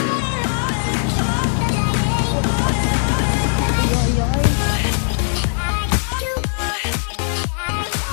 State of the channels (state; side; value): silent; right; digital silence